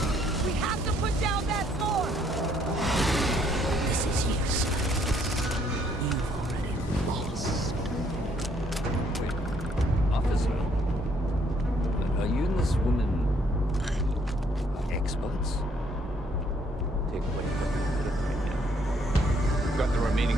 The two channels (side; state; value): both; normal; correlation 0.67